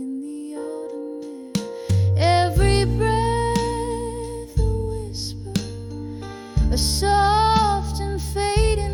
the autumn air. Every breath a whisper, a soft and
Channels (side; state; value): both; identical; correlation 1.00